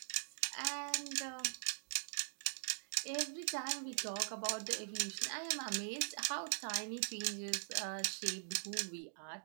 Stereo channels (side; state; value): left; silent; digital silence